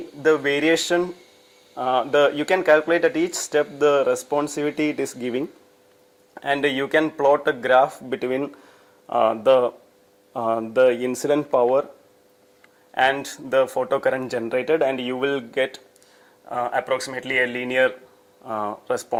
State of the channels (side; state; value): both; identical; correlation 1.00